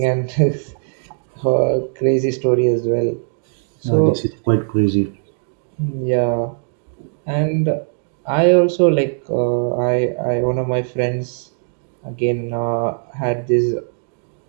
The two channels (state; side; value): silent; left; digital silence